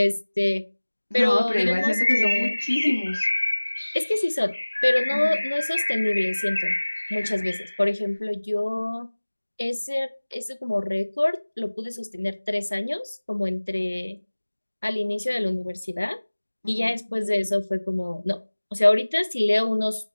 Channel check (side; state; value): both; inverted; correlation -1.00